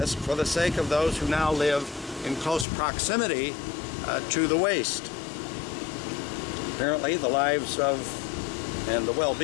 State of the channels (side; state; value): right; drops out; at 2.7 s